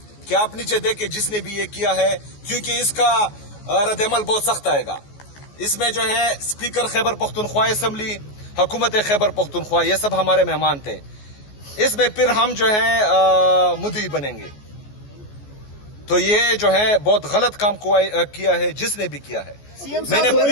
کہ آپ نیچے دیکھیں جس نے بھی یہ کیا ہے، کیونکہ اس کا رد عمل بہت سخت آئے گا۔ اس میں جو ہے اسپیکر خیبر پختونخوا اسمبلی، حکومت خیبر پختونخوا یہ سب ہمارے مہمان تھے۔ اس میں پھر ہم جو ہے مدعی بنیں گے۔ تو یہ جو ہے بہت غلط کام کیا ہے جس نے بھی کیا ہے۔ میں نے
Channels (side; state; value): right; late; 14 ms